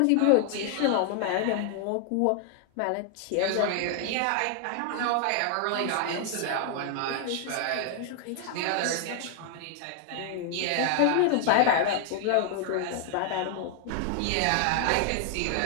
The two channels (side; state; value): both; different; correlation 0.00